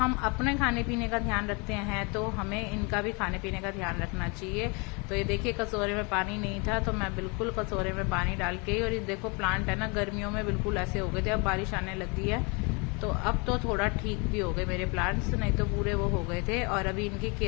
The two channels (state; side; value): quieter; right; 30.6 dB